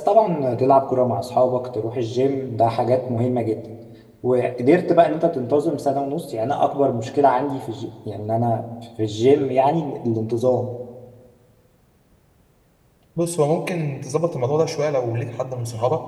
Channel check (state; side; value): identical; both; correlation 1.00